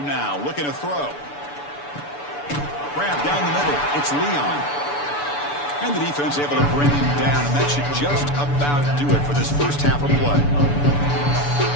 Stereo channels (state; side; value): late; right; 6.9 ms